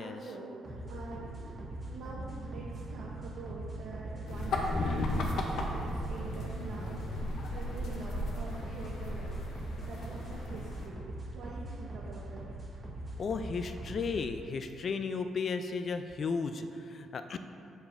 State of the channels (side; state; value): both; normal; correlation 0.74